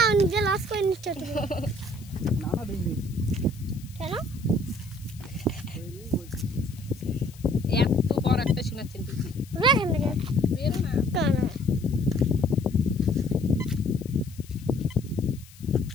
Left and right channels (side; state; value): left; noise; hiss, 23 dB below the sound